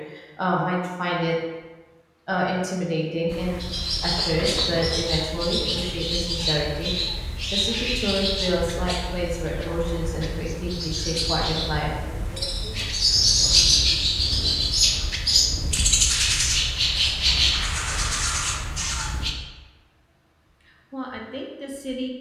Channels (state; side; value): identical; both; correlation 1.00